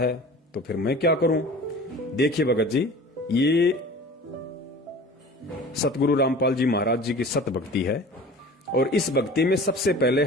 तो फिर मैं क्या करूं? देखिए भगत जी, ये सतगुरु रामपाल जी महाराज जी की सत भक्ति है, और इस भक्ति में सबसे पहले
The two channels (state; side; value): normal; both; correlation 0.41